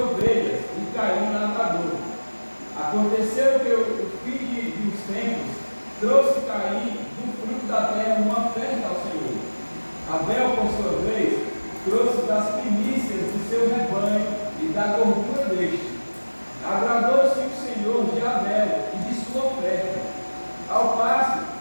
e Caim lavrador. Aconteceu que o fim dos tempos trouxe Caim do fruto da terra uma oferta ao Senhor. Abel, por sua vez, trouxe das primícias do seu rebanho e da gordura deste. Agradou-se o Senhor de Abel e de sua oferta, ao passo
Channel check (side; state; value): both; inverted; correlation -1.00